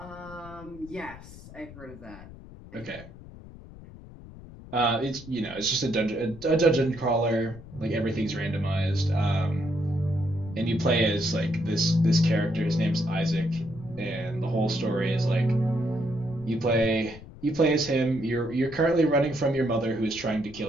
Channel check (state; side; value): noise; left; rumble, 17 dB below the sound